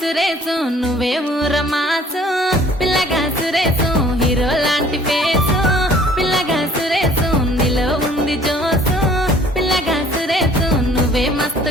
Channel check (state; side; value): normal; both; correlation 0.55